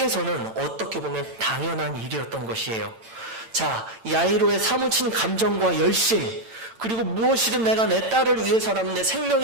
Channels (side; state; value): left; late; 8.9 ms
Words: 어떻게 보면 당연한 일이었던 것이에요. 자, 야이로의 사무친 감정과 열심, 그리고 무엇이든 내가 내 딸을 위해서라면 내